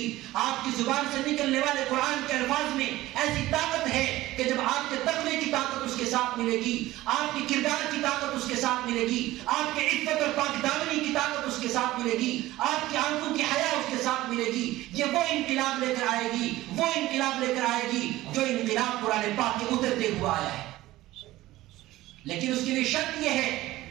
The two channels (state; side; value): quieter; left; 16.8 dB